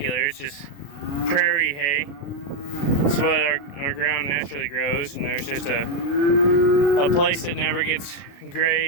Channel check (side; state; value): right; late; 36 ms